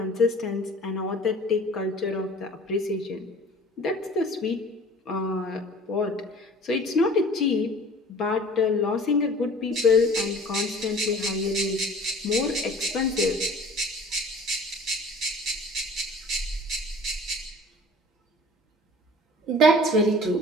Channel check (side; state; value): both; normal; correlation 0.46